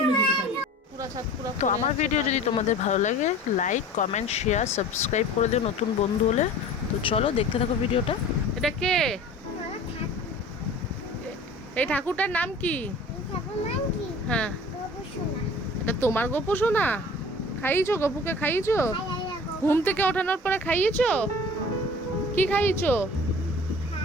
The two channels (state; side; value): normal; both; correlation 0.43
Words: তো আমার ভিডিও যদি তোমাদের ভালো লাগে, লাইক, কমেন্ট, শেয়ার, সাবস্ক্রাইব করে দিও নতুন বন্ধু হলে। তো চলো দেখতে থাকো ভিডিওটা। এটা কে? এই ঠাকুরটার নাম কি? হ্যাঁ, এটা তোমার গপু সোনা? খাইয়েছো গপুকে? খাইয়েছো? ঘুম থেকে ওঠানোর পরে খাইয়েছো? কি খাইয়েছো?